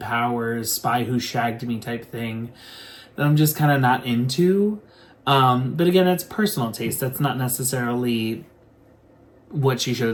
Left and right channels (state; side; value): identical; both; correlation 1.00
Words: Spy Who Shagged Me type thing that I'm just kind of not into. But again, that's personal taste. That's not necessarily what she should